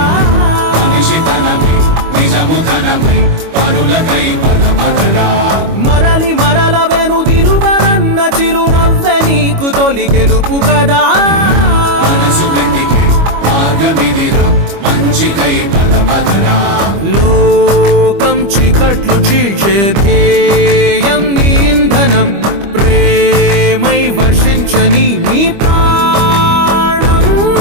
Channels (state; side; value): late; left; 25 ms